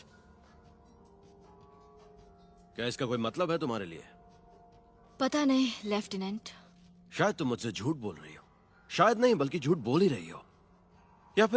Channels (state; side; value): identical; both; correlation 1.00